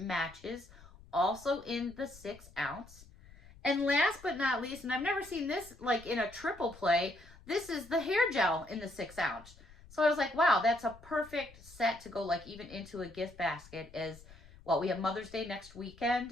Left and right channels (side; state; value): left; noise; rumble, 22 dB below the sound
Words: also in the 6 ounce. And last but not least, and I've never seen this like in a triple play, this is the hair gel in the 6 ounce. So I was like, wow, that's a perfect set to go like even into a gift basket. As well, we have Mother's Day next